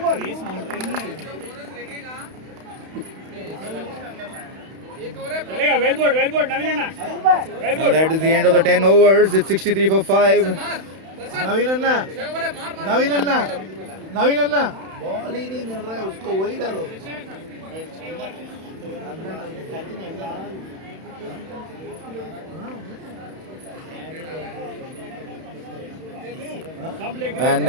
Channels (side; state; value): left; late; 31 ms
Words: Well ball, Naveen Anna. And that is the end of the 10 overs. It's 63 for 5. Naveen anna ball ही नहीं मिल रहा है उसको, वही डालो. And